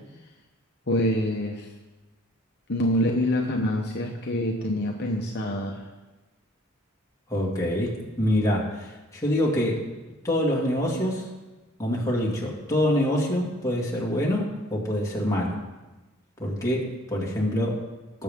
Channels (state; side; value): normal; both; correlation 0.58